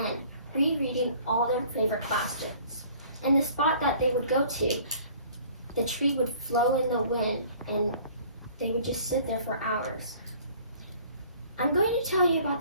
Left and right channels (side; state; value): both; inverted; correlation -0.52